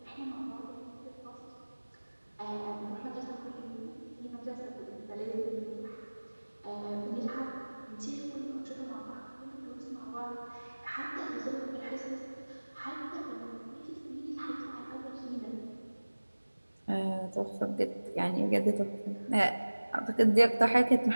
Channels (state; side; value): inverted; both; correlation -1.00